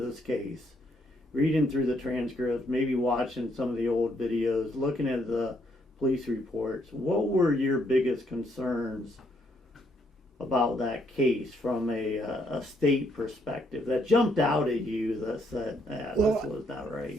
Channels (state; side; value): normal; both; correlation 0.72